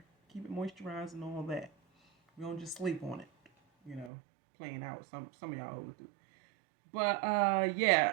Keep it moisturized and all that. We don't just sleep on it, you know, playing out. Some of y'all overdo. But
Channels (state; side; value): drops out; left; at 4.1 s